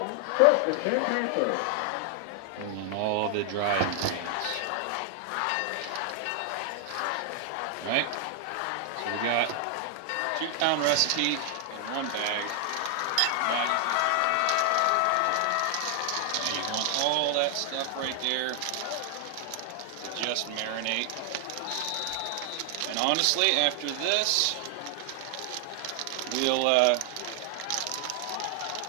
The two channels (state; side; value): different; both; correlation 0.00